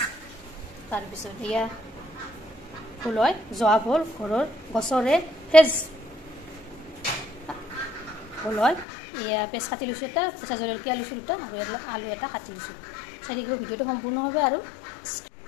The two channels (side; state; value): right; drops out; at 8.8 s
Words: তাৰ পিছত এয়া ফুলয় জোৱা ভল ঘৰৰ গছৰে ফ্ৰেজ ফুলয় এয়া পেছ কাটি লৈছো এটা কেঁচা জলকীয়া লৈছো দুটা আৰু আলু এটা কাটি লৈছো চাৰিগো ভিডিওটো সম্পূৰ্ণ হবে আৰু